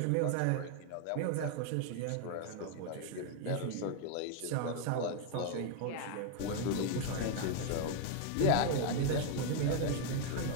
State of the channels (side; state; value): both; different; correlation 0.01